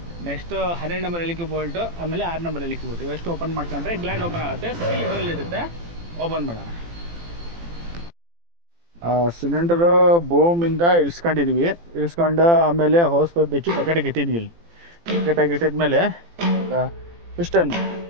ನೆಕ್ಸ್ಟ್ 12 ನಂಬರ್ ಎಲಿಕೆ ಬೋಲ್ಟು, ಆಮೇಲೆ 6 ನಂಬರ್ ಎಲಿಕೆ ಬೋಲ್ಟ್, ಇವೆಷ್ಟು ಓಪನ್ ಮಾಡ್ಕೊಂಡ್ರೆ ಗ್ಲ್ಯಾಂಡ್ ಓಪನ್ ಆಗುತ್ತೆ. ಸ್ಟೀಲ್ ಇದರಲ್ಲಿ ಇರುತ್ತೆ. ಓಪನ್ ಮಾಡೋಣ. ಸಿಲಿಂಡರ್ ಬೋಮಿಂದ ಇಳಿಸ್ಕೊಂಡಿದ್ವಿ. ಇಳಿಸ್ಕೊಂಡು ಆಮೇಲೆ ಹೋಸ್ ಬಿಚ್ಚಿ ಪ್ಯಾಕೆಟಿಗೆ ಇಟ್ಟಿದ್ವಿ. ಪ್ಯಾಕೆಟಾಗಿ ಇಟ್ಟಿದ್ಮೇಲೆ ಪಿಸ್ಟನ್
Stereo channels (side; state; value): left; late; 18 ms